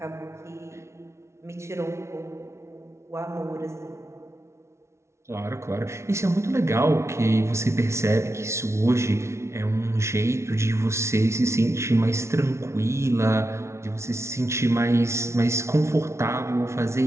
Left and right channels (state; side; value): late; left; 0.13 ms